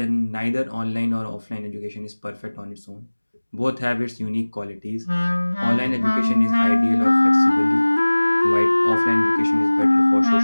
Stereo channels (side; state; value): both; inverted; correlation -1.00